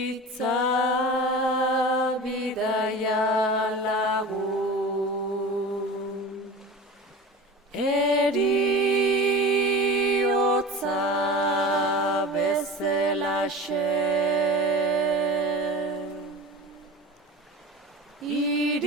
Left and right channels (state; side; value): normal; both; correlation 0.34